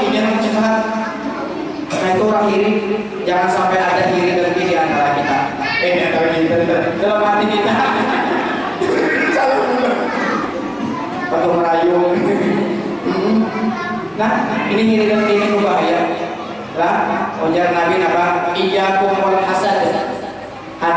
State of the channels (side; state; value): both; identical; correlation 1.00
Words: yang kesusahan. Nah itu orang iri. Jangan sampai ada iri dan iri di antara kita. Antara kita dalam hati kita. Salah benar. Atau merayu. Nah ini iri dan iri berbahaya. Lah, ujar Nabi apa? Iyyakum wal hasad.